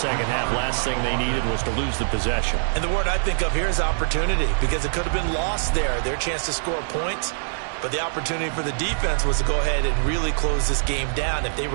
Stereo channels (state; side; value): silent; left; digital silence